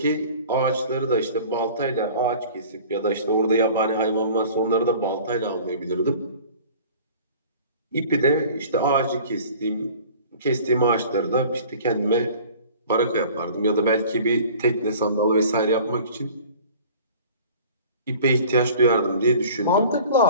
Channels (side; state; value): both; inverted; correlation -0.45